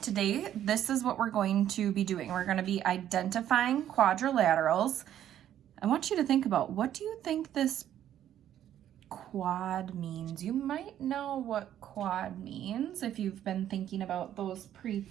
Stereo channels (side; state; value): left; quieter; 11.1 dB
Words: today, this is what we're going to be doing. We're going to be identifying quadrilaterals. I want you to think about, what do you think this quad means? You might know what quad means if you've been thinking about those